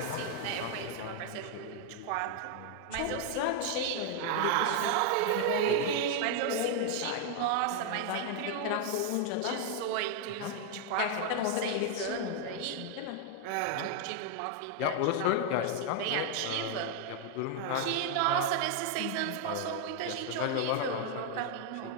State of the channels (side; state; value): both; different; correlation 0.00